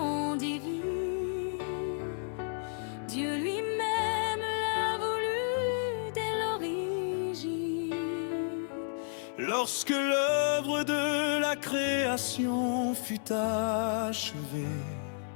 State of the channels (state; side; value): silent; right; 57 dB below the other